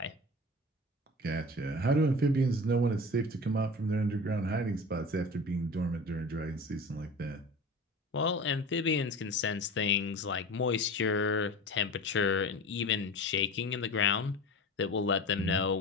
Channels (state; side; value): normal; both; correlation 0.34